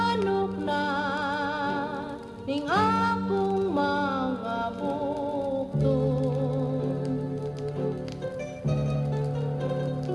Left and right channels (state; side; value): identical; both; correlation 1.00